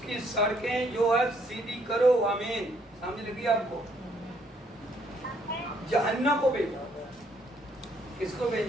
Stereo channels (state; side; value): normal; both; correlation 0.68